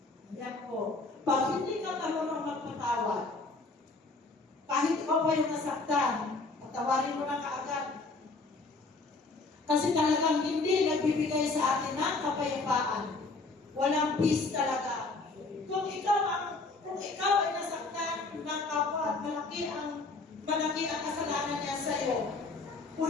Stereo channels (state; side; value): quieter; right; 3.6 dB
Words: Yan po. Pag hindi ka marunong magpatawad, kahit ikaw pa yung nasaktan, patawarin mo na kaagad. Kasi talagang hindi nagbibigay sa atin ng kapayapaan. Walang peace talaga. Kung ikaw ay nasaktan ng kapwa at malaki ang kasalanan niya sa iyo,